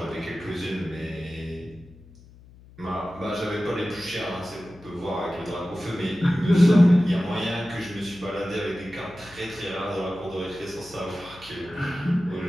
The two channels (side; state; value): left; noise; hum, 22 dB below the sound